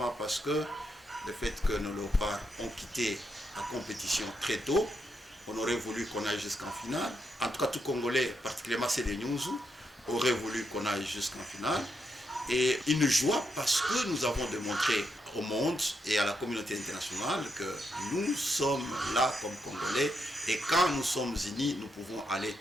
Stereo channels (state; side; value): normal; both; correlation 0.81